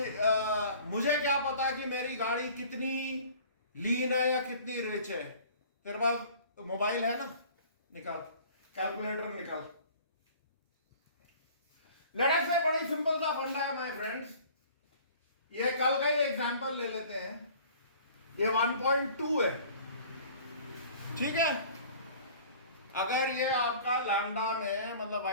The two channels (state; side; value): inverted; both; correlation -0.48